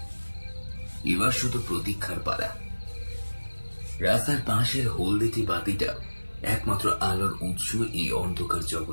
এবার শুধু প্রতীক্ষার পালা। রাস্তার পাশের হলদেটি বাতিটা একমাত্র আলোর উৎস এই অন্ধকার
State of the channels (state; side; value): inverted; both; correlation -1.00